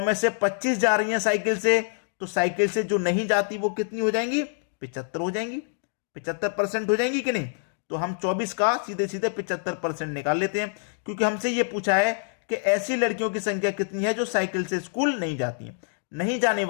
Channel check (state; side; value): silent; right; digital silence